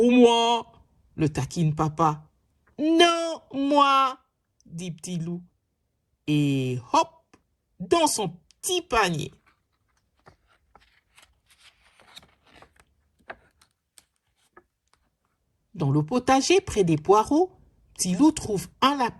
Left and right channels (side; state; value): both; identical; correlation 1.00